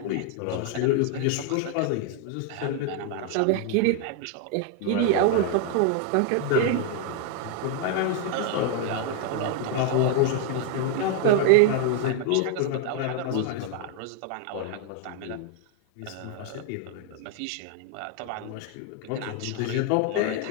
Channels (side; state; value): both; different; correlation 0.00